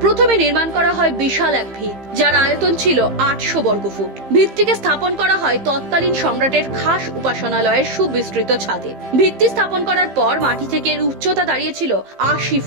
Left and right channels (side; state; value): left; late; 15 ms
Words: প্রথমে নির্মাণ করা হয় বিশাল এক ভিত, যার আয়তন ছিল 800 বর্গফুট। ভিতটিকে স্থাপন করা হয় তৎকালীন সম্রাটের খাস উপাসনালয়ের সুবিস্তৃত ছাদে। ভিত্তি স্থাপন করার পর মাটি থেকে এর উচ্চতা দাঁড়িয়েছিল 80